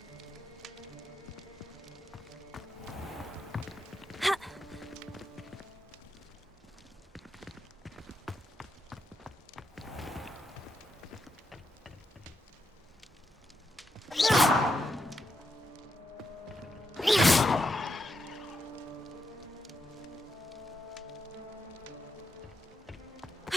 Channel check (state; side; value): normal; both; correlation 0.83